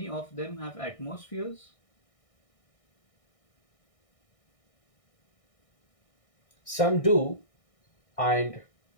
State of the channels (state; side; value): late; right; 1.6 ms